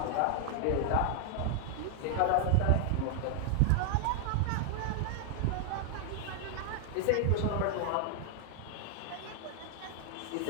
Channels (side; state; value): both; different; correlation 0.00